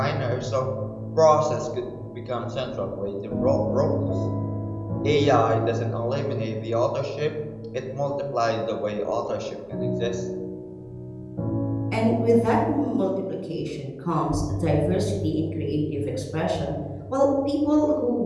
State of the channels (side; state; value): both; identical; correlation 1.00